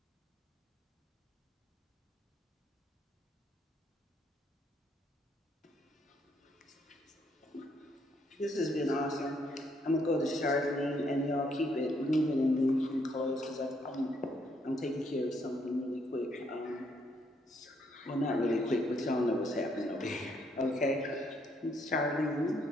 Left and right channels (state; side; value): normal; both; correlation 0.72